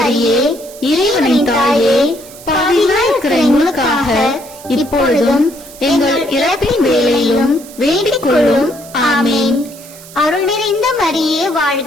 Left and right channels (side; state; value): right; noise; hiss, 19 dB below the sound